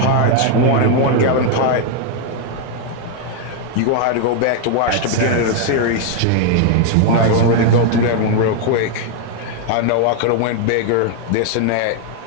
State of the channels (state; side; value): different; both; correlation 0.00